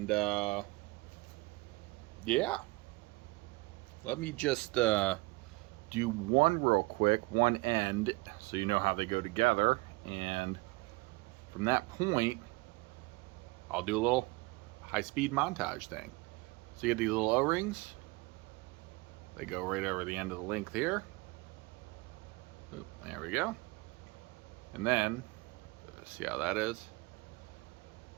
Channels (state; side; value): quieter; left; 24.2 dB